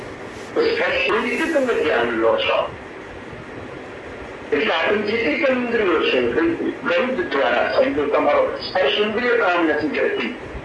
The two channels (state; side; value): identical; both; correlation 1.00